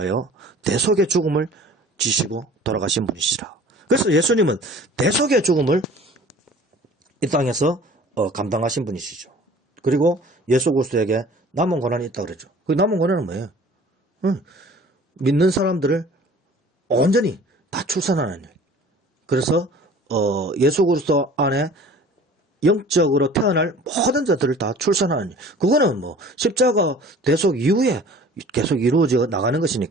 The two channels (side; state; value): both; normal; correlation 0.47